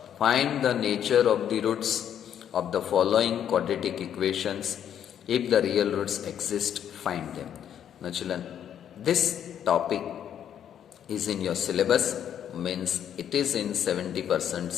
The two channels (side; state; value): right; quieter; 9.5 dB